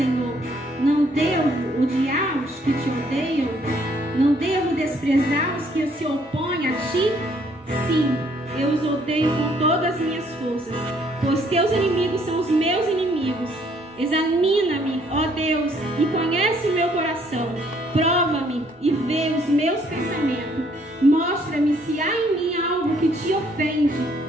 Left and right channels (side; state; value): both; normal; correlation 0.65